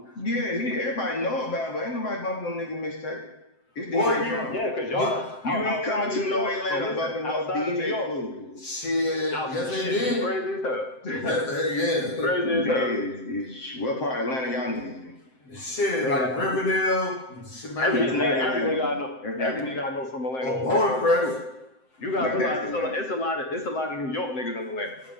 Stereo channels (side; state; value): right; late; 7.7 ms